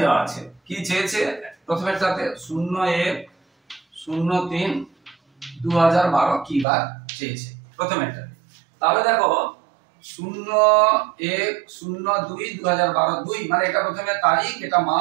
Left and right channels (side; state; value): left; drops out; at 6.7 s